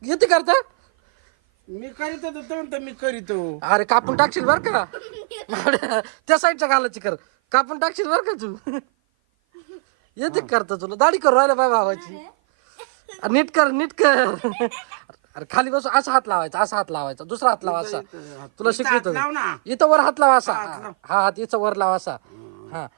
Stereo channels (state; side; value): silent; left; 56 dB below the other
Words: येते करता? मी करीतो तर मी करीतो. अरे कापून टाकशील बर का? त्या साईडच्या घालायची कर, कापून टाकशील बर का तू? येते करता तुला? दाढी करू राहिला बाय भावाची. नीट कर, नीट कर. अरे खाली बस, असा हात लावायचा, असा हात लावायचा, दुसरा हात लावा असा. तुला शिकवितो लाव ना. इथं वर हात लावा असा. हा हात इथं वर लावा असा. हा